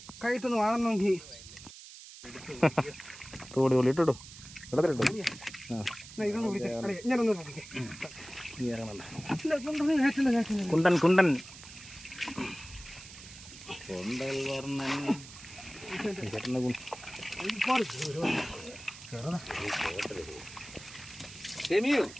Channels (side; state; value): right; noise; hiss, 16 dB below the sound